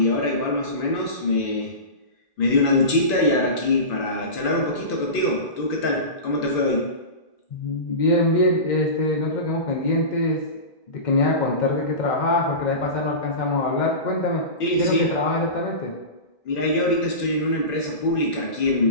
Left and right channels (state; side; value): late; right; 2.5 ms